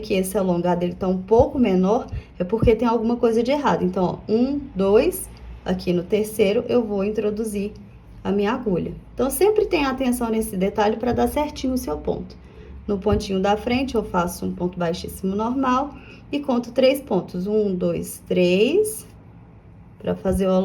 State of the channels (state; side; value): identical; both; correlation 1.00